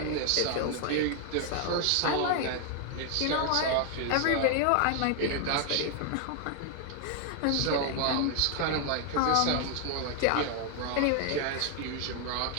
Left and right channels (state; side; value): different; both; correlation 0.00